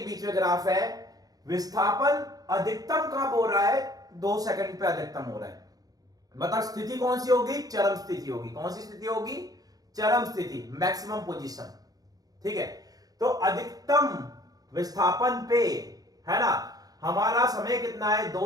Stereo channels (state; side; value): late; left; 0.18 ms